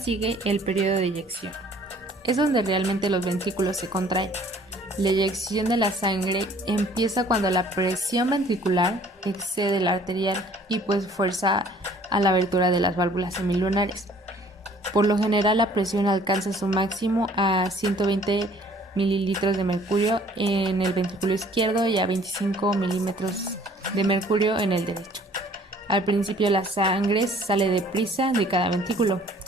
el periodo de eyección. Es donde realmente los ventrículos se contraen. La eyección de la sangre empieza cuando la presión ventricular excede la arterial y pues fuerza a la abertura de las válvulas semilunares. Por lo general la presión alcanza su máximo a 120 mililitros de mercurio en el ventrículo izquierdo y a 25 milímetros de mercurio en el derecho. Al principio la sangre sale deprisa de cada ventrículo,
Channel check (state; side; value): normal; both; correlation 0.56